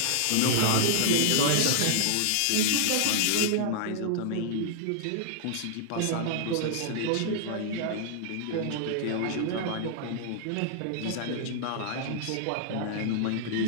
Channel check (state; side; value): different; both; correlation -0.01